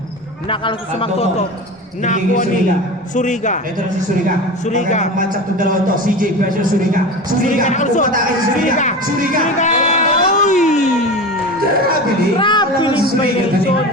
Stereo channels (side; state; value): both; normal; correlation 0.29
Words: Nakalusot sa Magtoto. Nakuha ni Suriga. Ito na si Suriga. Suriga. Ang matchup ng dalawa to. CJ versus Suriga. Suriga nakalusot. Umatake si Suriga. Suriga. Uy! Grabe Grabe yung violation.